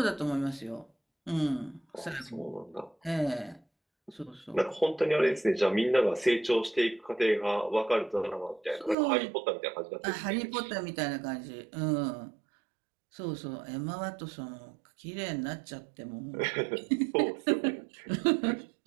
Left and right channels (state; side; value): drops out; left; at 9.0 s